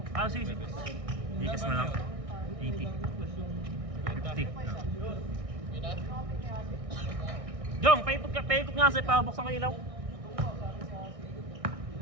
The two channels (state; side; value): late; left; 1.6 ms